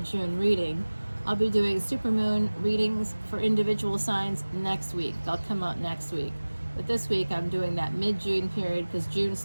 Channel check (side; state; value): both; inverted; correlation -1.00